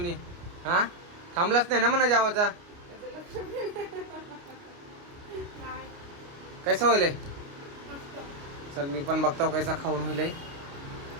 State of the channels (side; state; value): left; late; 29 ms